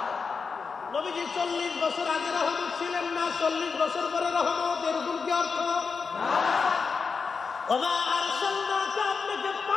নবীজি 40 বছর আগে রহমত ছিলেন না, 40 বছর পরে রহমত, এরকম কি অর্থ? ওয়া আরসালনাকা, আপনাকে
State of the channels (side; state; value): right; quieter; 5.1 dB